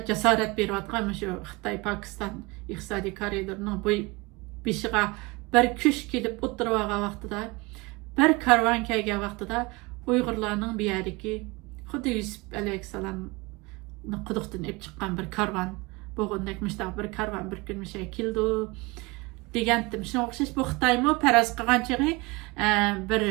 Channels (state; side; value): quieter; left; 24.8 dB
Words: jasorat berayotgan shu Xitoy Pokiston iqtisodiy koridorining bu beshiga bir kuch kelib o'tirgan vaqtida bir karvon kelgan vaqtida Uyg'urlarning bu yerdagi xuddi Yusuf alayhissalomni quduqdan olib chiqqan bir karvon bo'lgandek bir karvon bir kun keldi degandim. Shunga o'xshash bu Xitoymi faraz qilgan chig'i bir